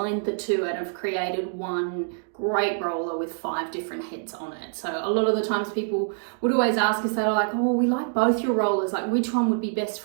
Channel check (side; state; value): left; silent; 61 dB below the other